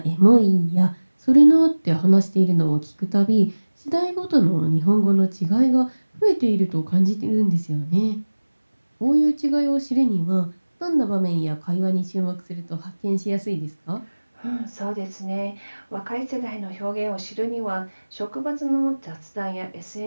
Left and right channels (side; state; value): both; inverted; correlation -1.00